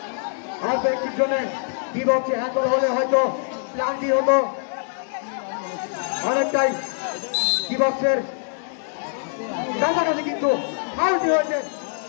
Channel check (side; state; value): right; silent; digital silence